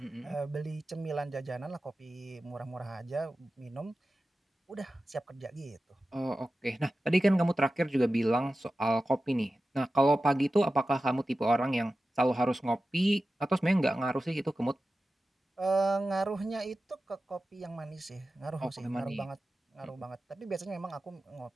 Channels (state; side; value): normal; both; correlation 0.94